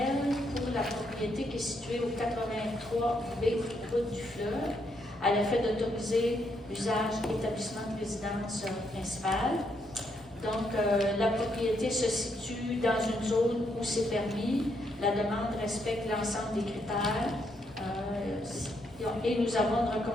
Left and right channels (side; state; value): both; normal; correlation 0.76